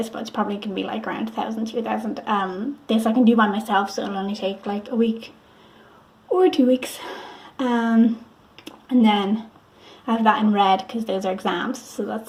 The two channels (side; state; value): both; identical; correlation 1.00